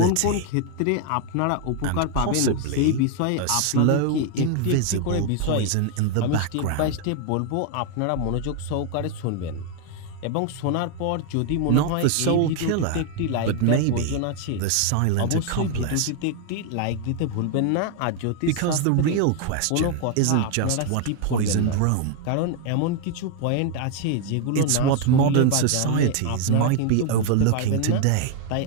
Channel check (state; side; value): different; both; correlation 0.00